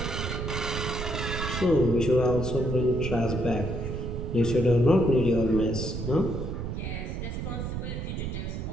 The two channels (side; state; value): right; noise; rumble, 4 dB below the sound